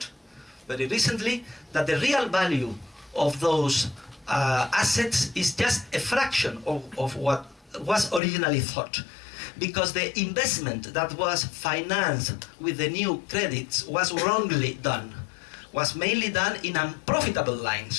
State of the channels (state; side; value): drops out; right; at 8.2 s